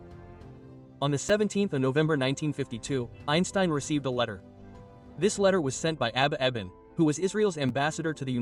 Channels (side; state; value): both; identical; correlation 1.00